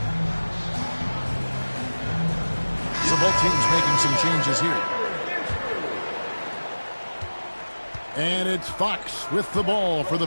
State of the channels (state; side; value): inverted; both; correlation -1.00